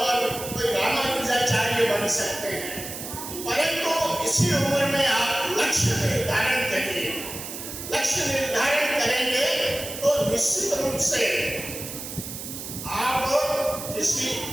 निश्चित रूप से आप किसी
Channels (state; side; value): noise; right; hiss, 9 dB below the sound